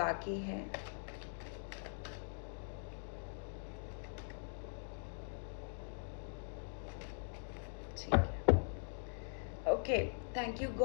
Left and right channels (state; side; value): silent; right; digital silence